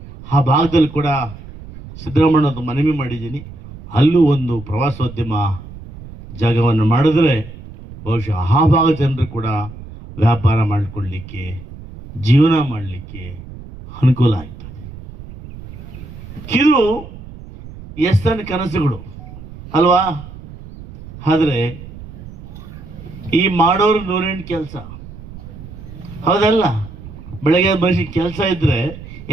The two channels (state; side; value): noise; right; rumble, 15 dB below the sound